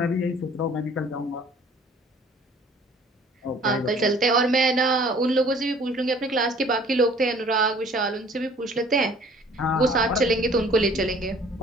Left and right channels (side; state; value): both; normal; correlation 0.53